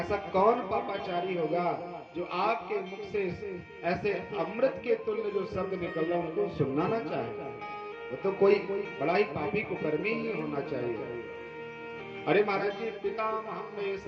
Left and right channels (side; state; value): both; identical; correlation 1.00